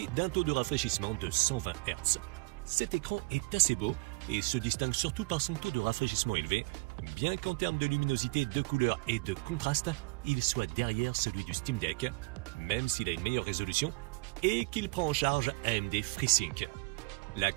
d'un taux de rafraîchissement de 120 Hz. Cet écran est assez beau et se distingue surtout par son taux de rafraîchissement élevé, bien qu'en termes de luminosité, de couleur et de contraste, il soit derrière celui du Steam Deck, même s'il a une meilleure résolution et qu'il prend en charge AMD FreeSync. La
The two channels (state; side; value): quieter; left; 27.2 dB